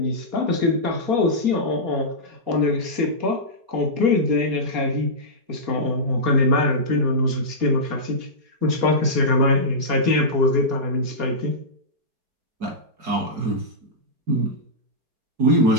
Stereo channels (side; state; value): left; late; 4.2 ms